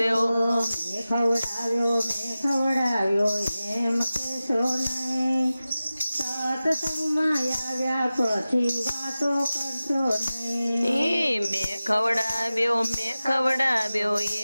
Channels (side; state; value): both; inverted; correlation -0.96